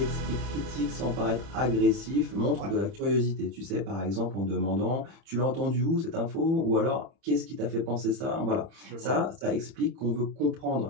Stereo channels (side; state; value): left; late; 30 ms